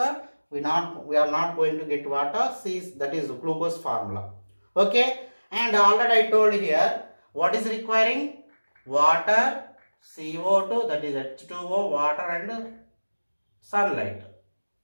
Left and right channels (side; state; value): both; inverted; correlation -1.00